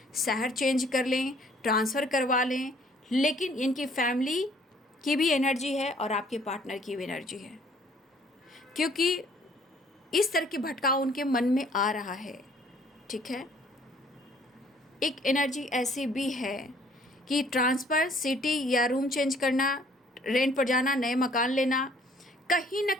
शहर चेंज कर लें, ट्रांसफ़र करवा लें। लेकिन इनकी फैमिली की भी एनर्जी है और आपके पार्टनर की भी एनर्जी है, क्योंकि इस तरह की भटकाव उनके मन में आ रहा है। ठीक है, एक एनर्जी ऐसी भी है कि ट्रांसफ़र, सिटी या रूम चेंज करना, रेंट पर जाना, नए मकान लेना, कहीं ना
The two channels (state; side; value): normal; both; correlation 0.59